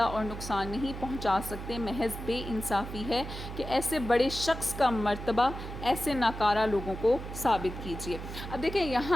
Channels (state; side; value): noise; right; hum, 9 dB below the sound